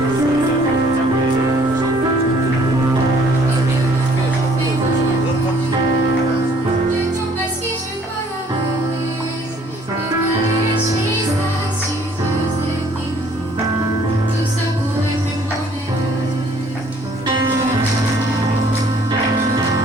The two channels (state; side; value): normal; both; correlation 0.59